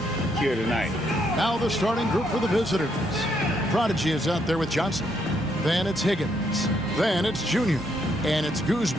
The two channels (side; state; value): both; normal; correlation 0.74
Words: here tonight. Now the starting group for the visitors. Prodigy is out there with Johnson. Then it's Higgins. Then it's Junior. And it's